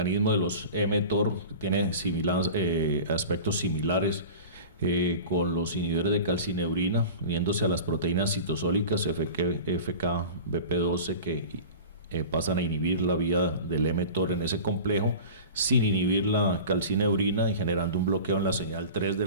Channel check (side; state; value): both; inverted; correlation -0.36